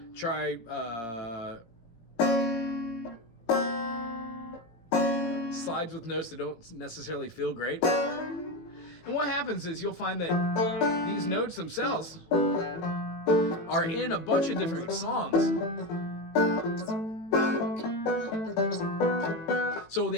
try slides with notes that don't necessarily feel great. And what happens is you'll find that these notes themselves are in a bunch of different songs. So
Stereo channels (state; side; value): late; right; 17 ms